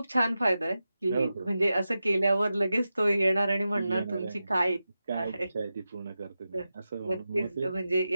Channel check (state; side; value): inverted; both; correlation -0.92